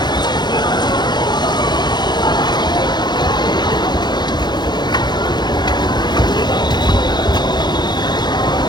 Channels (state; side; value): late; right; 0.21 ms